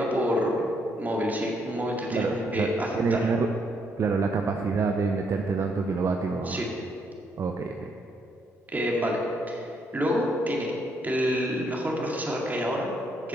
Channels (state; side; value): normal; both; correlation 0.74